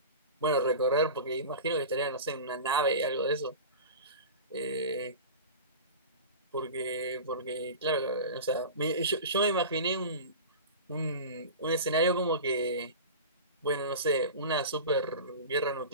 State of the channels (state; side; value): inverted; both; correlation -0.32